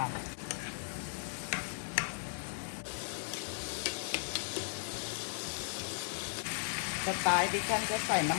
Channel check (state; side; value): silent; right; digital silence